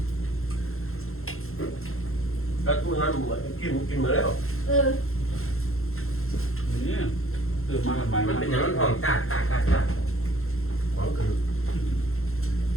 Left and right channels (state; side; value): late; right; 0.62 ms